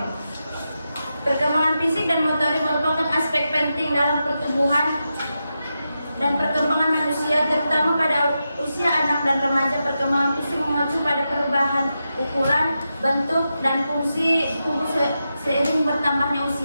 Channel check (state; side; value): inverted; both; correlation -0.88